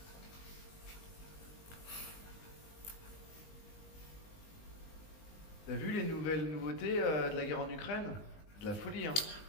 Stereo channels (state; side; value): late; right; 19 ms